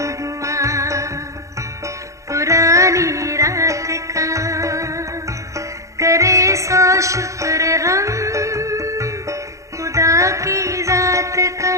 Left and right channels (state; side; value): late; left; 0.15 ms